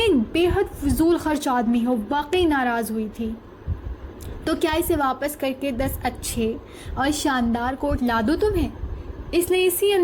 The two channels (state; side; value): identical; both; correlation 1.00